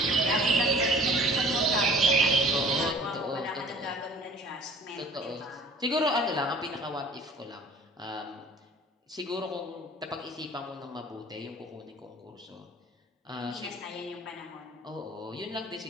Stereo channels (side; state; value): both; normal; correlation 0.49